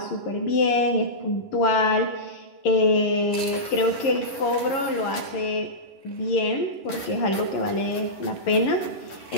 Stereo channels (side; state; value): right; late; 10 ms